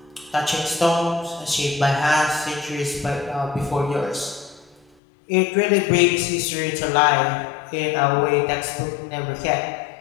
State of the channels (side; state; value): right; drops out; at 4.9 s